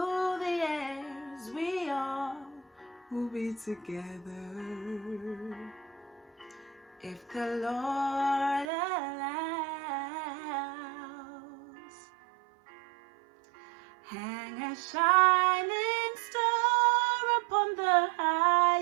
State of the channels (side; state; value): left; drops out; at 8.7 s